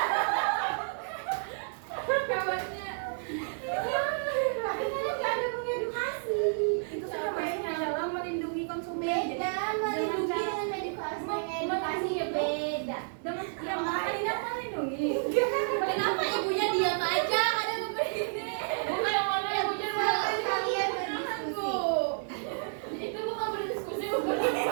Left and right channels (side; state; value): left; silent; digital silence